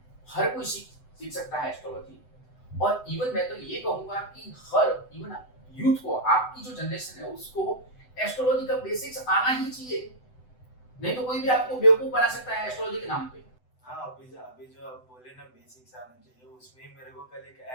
हर कोई सीख सकता है एस्ट्रोलॉजी। और इवन मैं तो ये कहूंगा कि हर इवन यूथ को, आपकी जो जनरेशन है उसको एस्ट्रोलॉजी का बेसिक्स आना ही चाहिए, नहीं तो कोई भी आपको बेवकूफ बना सकता है एस्ट्रोलॉजी के नाम पे। हाँ, अभी जो आप बोले ना बेसिक्स आना चाहिए, उसमें ही मेरे को कल एक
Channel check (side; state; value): right; late; 7.9 ms